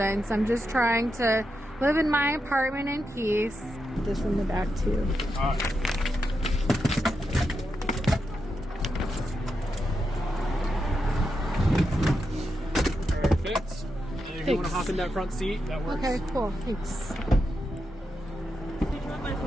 I'm just trying to live in my apartment in peace. This in the back, too. Perfect. And if you want to hop in that front seat, that works. Okay, cool. Thanks. Did you want my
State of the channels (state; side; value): normal; both; correlation 0.86